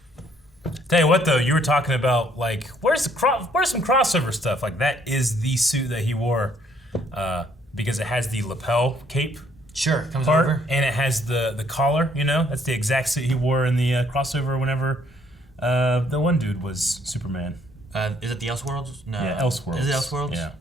Tell you what, though, you were talking about, like, where's some crossover stuff? Like, that is the suit that he wore because it has the lapel cape. Sure, comes part, over. And it has the collar, you know? That's the exact suit he wore in the crossover whenever the one dude was Superman. Is it the Elseworlds? No. Yeah, Elseworlds. Is it Elseworlds? Yeah.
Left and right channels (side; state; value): both; normal; correlation 0.65